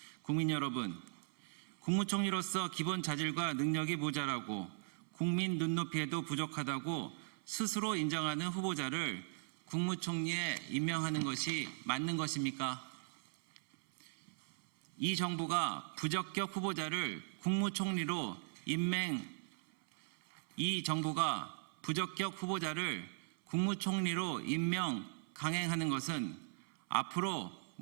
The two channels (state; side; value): silent; left; 52 dB below the other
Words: 국민 여러분, 국무총리로서 기본 자질과 능력이 모자라고 국민 눈높이에도 부족하다고 스스로 인정하는 후보자를 국무총리에 임명하는 것이 맞는 것입니까? 이 정부가 부적격 후보자를 국무총리로 임명 강행하는 것은 앞으로